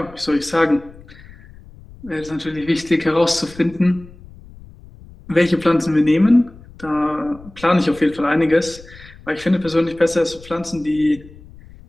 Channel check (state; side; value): noise; left; rumble, 20 dB below the sound